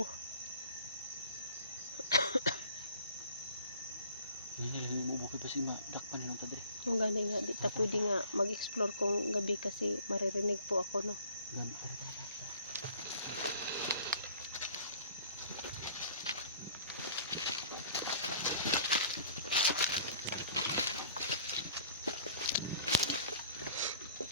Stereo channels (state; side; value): inverted; both; correlation -0.51